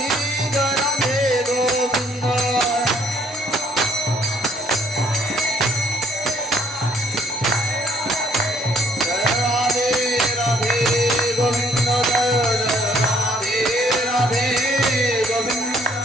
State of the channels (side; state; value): both; normal; correlation 0.64